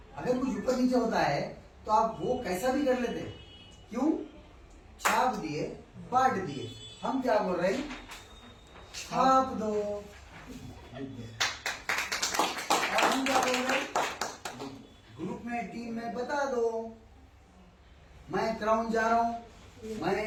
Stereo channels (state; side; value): identical; both; correlation 1.00